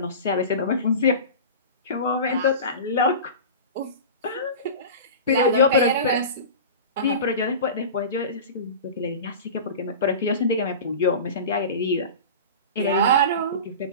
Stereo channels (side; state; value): both; inverted; correlation -0.32